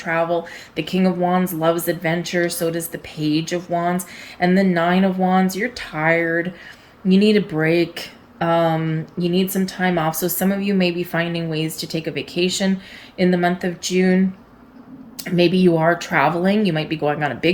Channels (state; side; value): identical; both; correlation 1.00